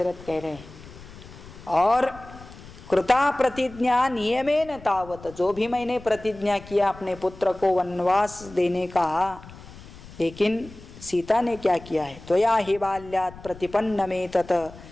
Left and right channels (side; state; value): left; noise; rumble, 18 dB below the sound